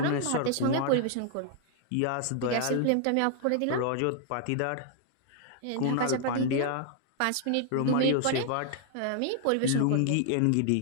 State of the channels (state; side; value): different; both; correlation 0.00